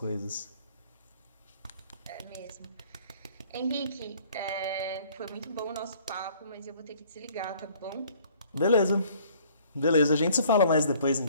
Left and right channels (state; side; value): inverted; both; correlation -0.57